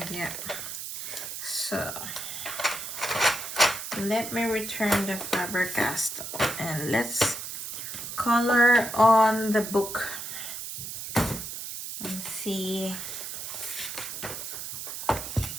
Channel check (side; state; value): right; noise; hiss, 7 dB below the sound